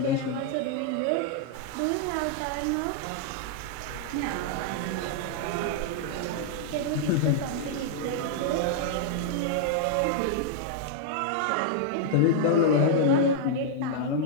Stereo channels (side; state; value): both; different; correlation -0.01